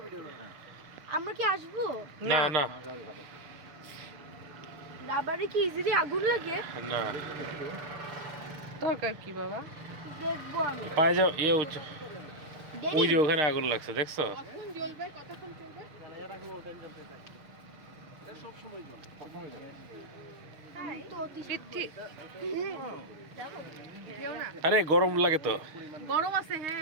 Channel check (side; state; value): left; late; 6.5 ms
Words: ভিডিও করেন। আমরা কি আসবো? না না রাবারে কি ইজিলি আগুন লাগে? না দরকার কি বাবা? দেখবো আমি। পায়ে যাও ইয়ে ওই দেরি। যে ওখানে আগুন লাগছে দেখছো কখন জ্বলবে? কতক্ষণ চলবে? এটা কোনো টাইম জ্বলতে থাকে। এটা সব সময় জ্বলে। তো পৃথ্বী যেও না। আরে গরম লাগে তো গরম আছে,